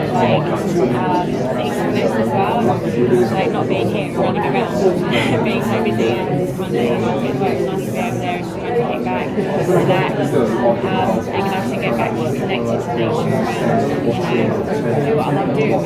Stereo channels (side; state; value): both; identical; correlation 1.00